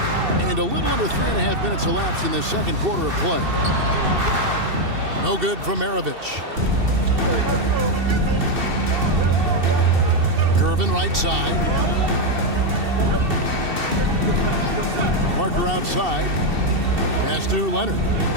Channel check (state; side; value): late; left; 2.7 ms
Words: And a little under 3.5 minutes elapsed in the second quarter of play. No good from Maravich. Gervin right side. Parker outside. Pass to Leonard.